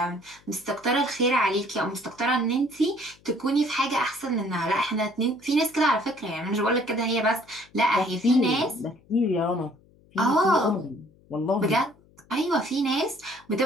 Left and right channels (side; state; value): left; noise; hum, 29 dB below the sound